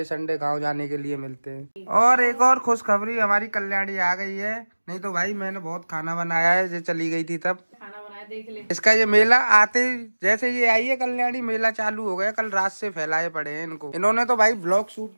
संडे गांव जाने के लिए मिलते हैं। और एक और खुशखबरी, हमारी कल्याणी आ गई है। नहीं तो भाई मैंने बहुत खाना बनाया है, जो चली गई थी तब खाना बनाया देख ले। इसका ये मेला आते जैसे ये आई है कल्याणी, मेला चालू हो गया। कल रात से फैलाए पड़े हैं इनको। इन्होंने तो भाई ब्लॉग शूट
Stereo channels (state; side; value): inverted; both; correlation -1.00